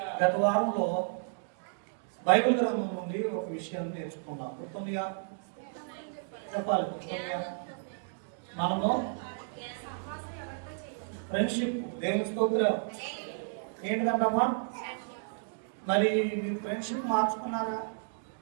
గత వారంలో బైబిల్ గ్రంథం నుండి ఒక విషయాన్ని నేర్చుకున్నాం. గుర్తుందిగా? చెప్పాలి. గుర్తుందిగా? మనము ఫ్రెండ్షిప్. దేవుని స్తోత్రం. ఏంటిదంటమ్మా? మరి మీరు ఫ్రెండ్షిప్ మార్చుకున్నారా?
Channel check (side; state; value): left; silent; digital silence